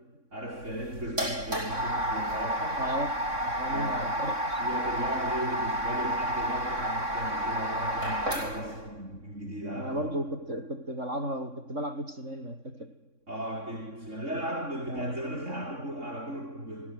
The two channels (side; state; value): left; late; 3.6 ms